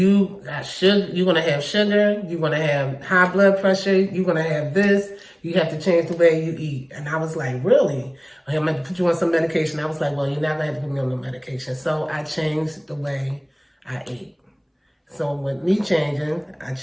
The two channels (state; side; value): identical; both; correlation 1.00